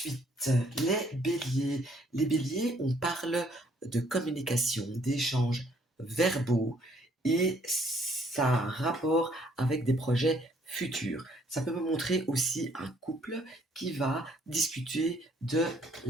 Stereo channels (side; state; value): both; normal; correlation 0.65